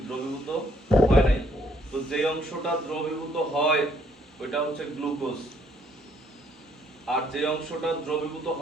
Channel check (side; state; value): both; normal; correlation 0.67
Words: দ্রবীভূত হয় নাই। তো যে অংশটা দ্রবীভূত হয় ওইটা হচ্ছে গ্লুকোজ, আর যে অংশটা দ্রবীভূত